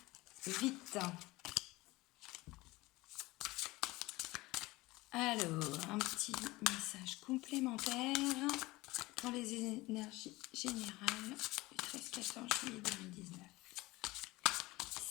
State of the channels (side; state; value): right; quieter; 20.6 dB